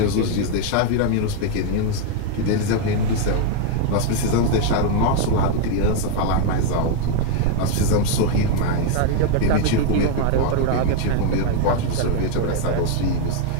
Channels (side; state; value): both; different; correlation 0.00